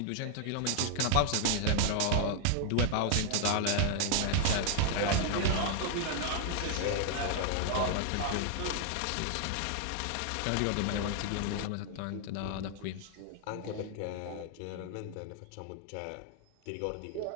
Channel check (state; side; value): different; both; correlation 0.00